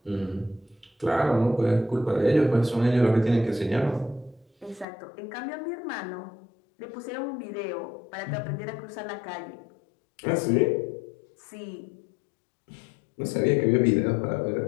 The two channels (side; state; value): right; drops out; at 4.9 s